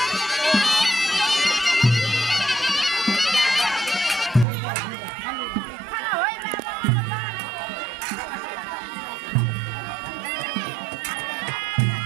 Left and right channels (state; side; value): drops out; left; at 4.5 s